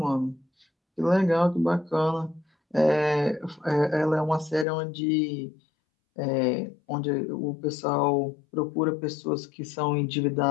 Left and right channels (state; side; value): drops out; right; at 4.7 s